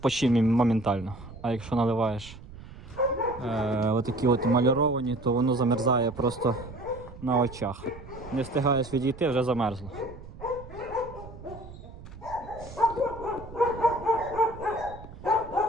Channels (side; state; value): right; noise; rumble, 16 dB below the sound